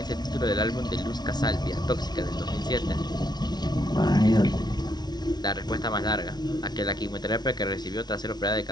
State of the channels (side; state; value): right; late; 0.20 ms